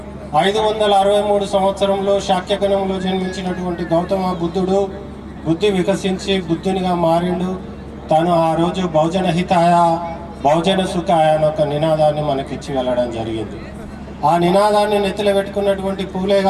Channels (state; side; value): identical; both; correlation 1.00